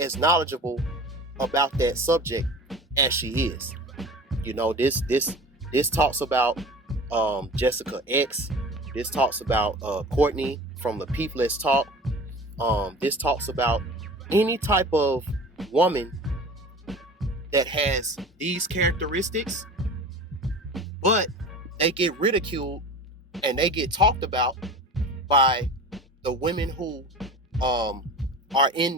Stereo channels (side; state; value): both; normal; correlation 0.38